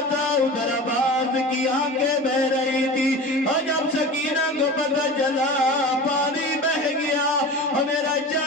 تھا، ادھر عباس کی آنکھیں بہ رہی تھی، اور جب سکینہ کو پتہ چلا پانی بہ گیا اور میرا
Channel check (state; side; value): normal; both; correlation 0.33